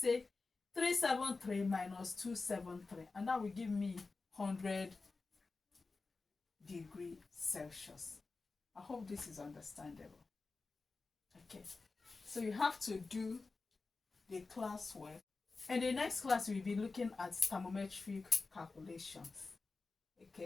373 minus 273, and that will give me 100 degrees Celsius. I hope this is understandable. Okay, so you have to do the classwork. In the next class, we'll be looking at thermometric calculations.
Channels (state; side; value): quieter; right; 3.9 dB